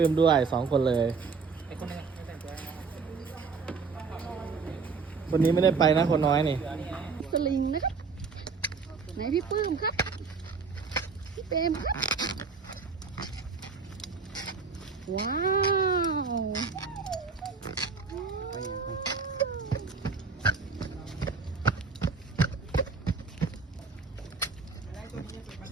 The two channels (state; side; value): quieter; left; 4.8 dB